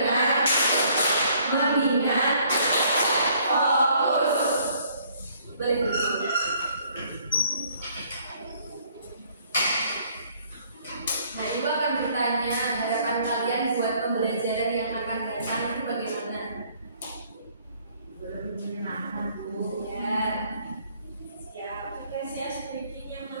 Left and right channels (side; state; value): both; inverted; correlation -0.62